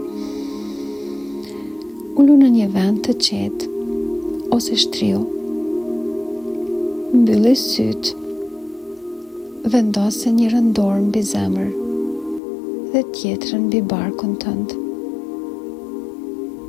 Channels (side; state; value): right; drops out; at 12.4 s